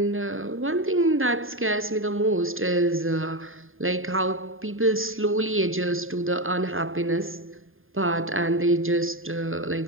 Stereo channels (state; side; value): late; left; 0.59 ms